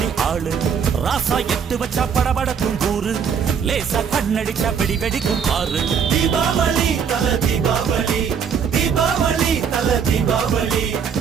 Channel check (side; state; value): left; quieter; 7.0 dB